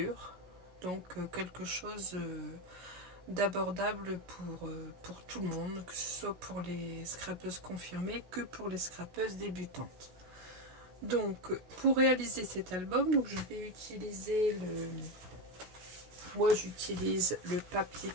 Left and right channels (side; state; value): left; late; 16 ms